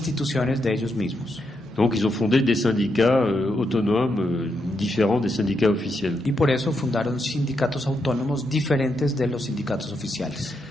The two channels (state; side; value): normal; both; correlation 0.82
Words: de ellos mismos. Donc ils ont fondé des syndicats autonomes différents des syndicats officiels. Y por eso fundaron sindicatos autónomos diferentes de los sindicatos oficiales.